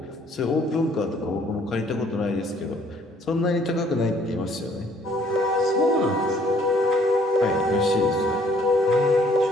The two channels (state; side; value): normal; both; correlation 0.62